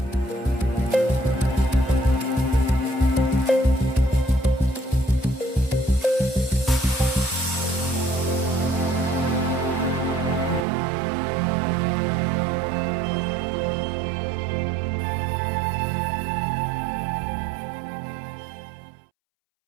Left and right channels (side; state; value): left; drops out; at 10.7 s